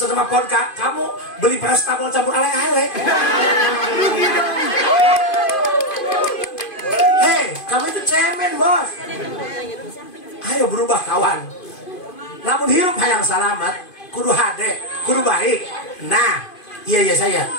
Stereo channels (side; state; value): right; late; 2.5 ms